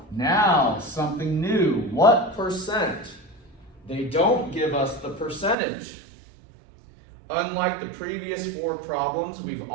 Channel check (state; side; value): drops out; left; at 5.6 s